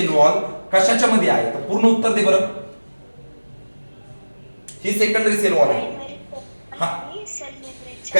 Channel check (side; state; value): both; inverted; correlation -1.00